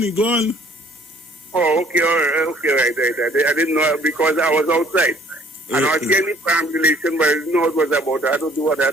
He gone. Oh, okay, all right, right. I didn't know because I was outside. And I was getting perambulation, but I didn't know what it was about. I had to do what I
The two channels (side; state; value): both; normal; correlation 0.57